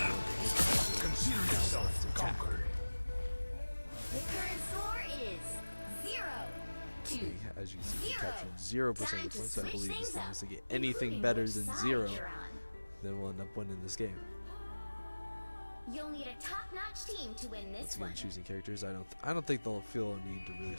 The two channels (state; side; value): inverted; both; correlation -1.00